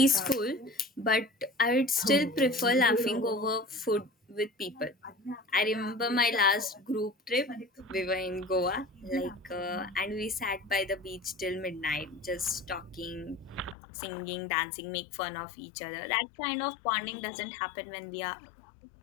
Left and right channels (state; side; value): drops out; right; at 13.8 s